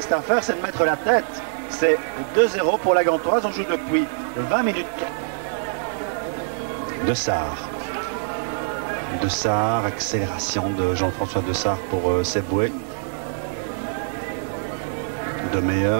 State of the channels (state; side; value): silent; left; digital silence